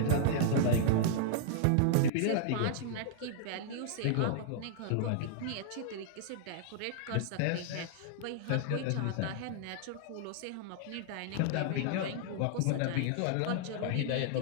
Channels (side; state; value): both; different; correlation -0.01